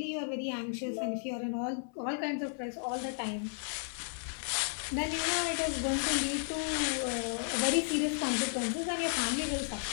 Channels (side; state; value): right; silent; 55 dB below the other